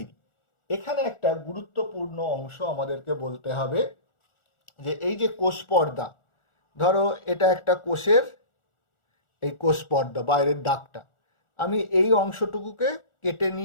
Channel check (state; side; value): late; right; 1.4 ms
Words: এখানে একটা গুরুত্বপূর্ণ অংশ আমাদেরকে বলতে হবে, যে এই যে কোষ পর্দা, ধরো এটা একটা কোষের এই কোষ পর্দা, বাইরের দাগটা, আমি এই অংশটুকুকে কেটে